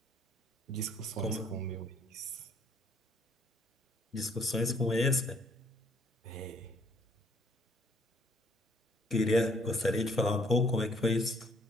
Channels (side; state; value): both; normal; correlation 0.64